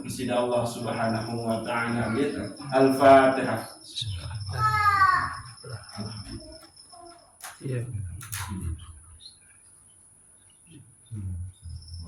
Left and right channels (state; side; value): identical; both; correlation 1.00